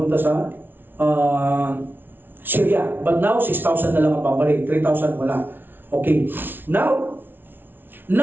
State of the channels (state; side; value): late; left; 0.099 ms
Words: sa Syria. But now, 6,000 na lang ang pabalik. 3,000 wala. Okay. Now,